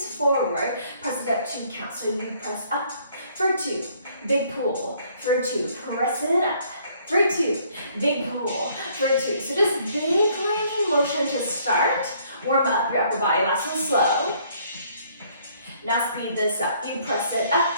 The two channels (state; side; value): inverted; both; correlation -0.63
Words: forward. Press it up 2 counts. So you press up for 2, big pull for 2. Press it up for 2, big pull for 2. So just big range of motion to start. Warm up your upper body. Last one slow. Now speed this up. You press it up.